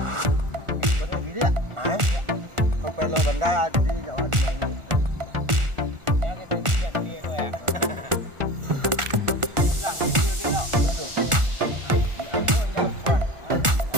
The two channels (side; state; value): left; late; 1.4 ms